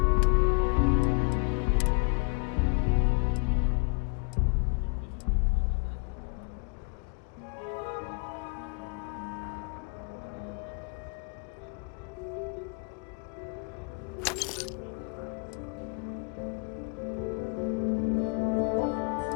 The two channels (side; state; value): right; quieter; 34.5 dB